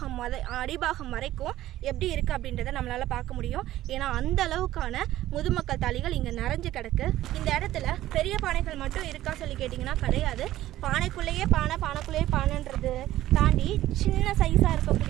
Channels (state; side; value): quieter; left; 14.5 dB